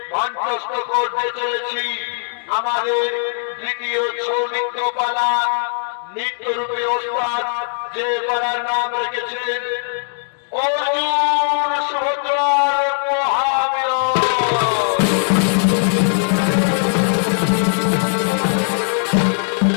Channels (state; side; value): silent; right; digital silence